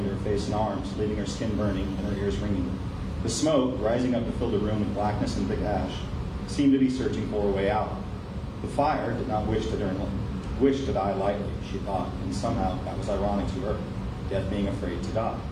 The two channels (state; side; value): identical; both; correlation 1.00